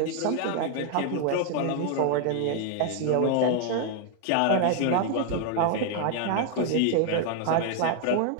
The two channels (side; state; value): both; different; correlation 0.00